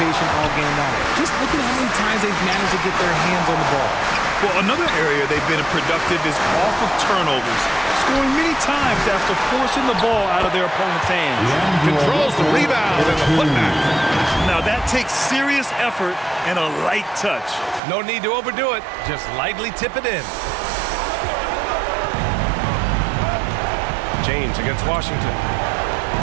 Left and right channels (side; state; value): left; drops out; at 17.8 s